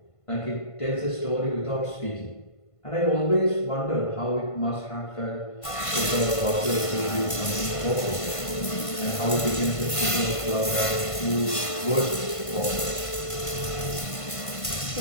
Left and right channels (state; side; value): late; right; 1.5 ms